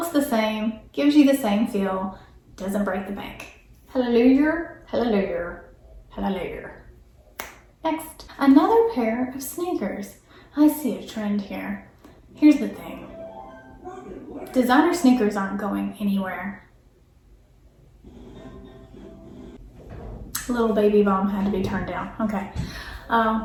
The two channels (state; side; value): identical; both; correlation 1.00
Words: the same, gives you the same feel, doesn't break the bank. Hallelujah, hallelujah, hallelujah. Next, another pair of sneakers. I see a trend here. Here's the thing. Designer sneakers aren't going anywhere. Little baby bomb had to be turned down. Okay.